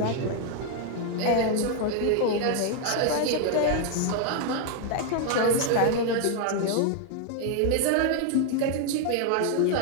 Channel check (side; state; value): both; different; correlation 0.00